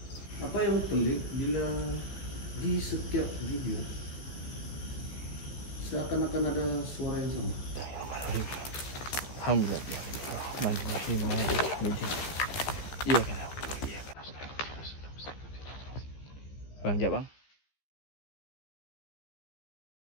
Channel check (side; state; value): right; late; 15 ms